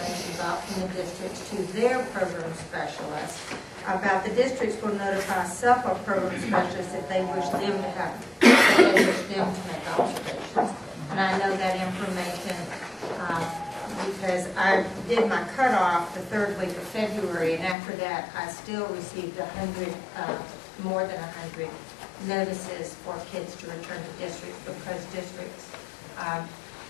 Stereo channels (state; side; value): drops out; right; at 17.8 s